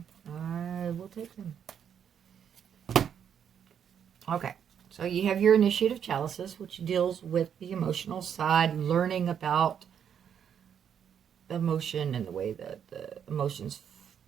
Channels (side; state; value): left; quieter; 8.3 dB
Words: I will take them. Okay. So you have your Initiative Chalices, which deals with the emotional side, learning about emotion and the way that the emotions